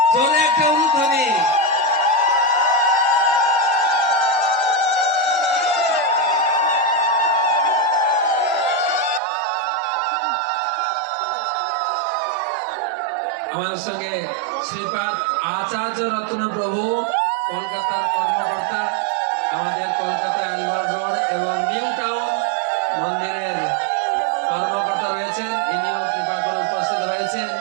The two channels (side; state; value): left; drops out; at 9.2 s